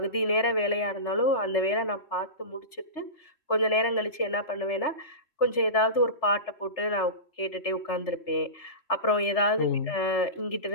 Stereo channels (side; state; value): right; late; 3.3 ms